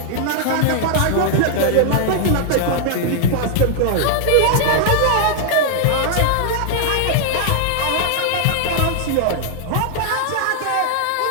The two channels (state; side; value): different; both; correlation 0.00